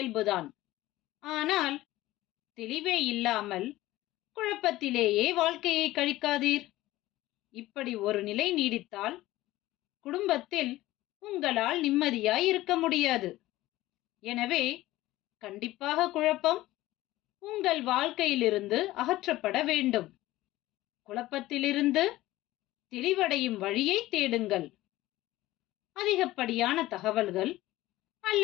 ஆனால் தெளிவே இல்லாமல் குழப்பத்திலேயே வாழ்க்கையை கழிக்காதீர். இப்படி ஒரு நிலை நீடித்தால் குடும்பத்தில் உங்களால் நிம்மதியாய் இருக்க முடியாது. எனவே கண்டிப்பாக குழப்பம் உங்கள் வாழ்க்கையிலிருந்து அகற்றப்பட வேண்டும். குழப்பத்திலிருந்து தெளிவடையும் வழியை தேடுங்கள். அதிகப்படியான தகவல்கள்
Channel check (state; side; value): quieter; right; 16.8 dB